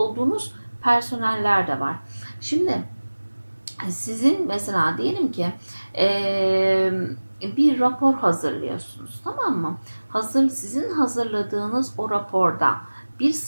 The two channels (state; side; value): inverted; both; correlation -1.00